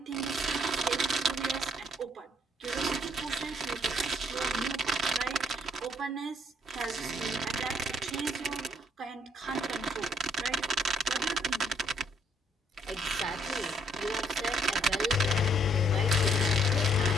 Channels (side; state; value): both; normal; correlation 0.67